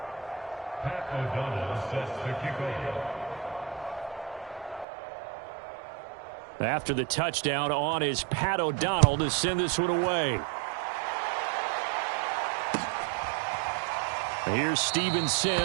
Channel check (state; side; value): drops out; left; at 4.9 s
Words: Pat O'Donnell sets the kickoff. After the touchdown, on is Pat O'Donnell to send this one away. Here's Steven